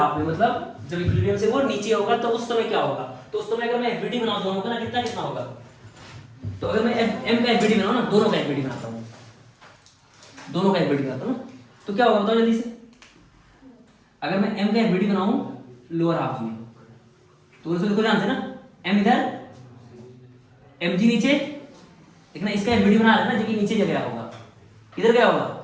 में मतलब जब इक्विलिब्रियम से वो नीचे होगा तो उस समय क्या होगा, तो उस समय अगर मैं एफबीडी बनाऊं दोनों का ना, कितना कितना होगा, तो अगर मैं एम का एफबीडी बनाऊं ना, दोनों का एफबीडी बनाता हूं, दोनों का एफबीडी बनाता हूँ तो क्या होगा बताओ जल्दी से। अगर मैं m का एफबीडी बनाऊं लोअर हाफ में तो उसको देखो ध्यान से ना, m इधर mg नीचे, देखना इसका एफबीडी बना रहा है ना जो कि नीचे गया होगा, किधर गया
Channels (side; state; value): both; identical; correlation 1.00